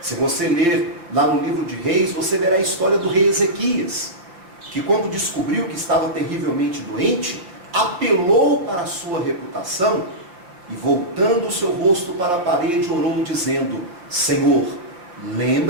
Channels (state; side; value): late; left; 5.7 ms